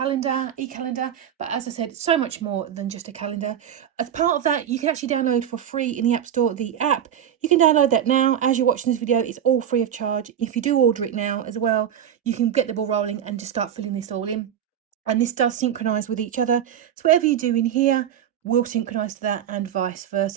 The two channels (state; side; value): quieter; left; 9.7 dB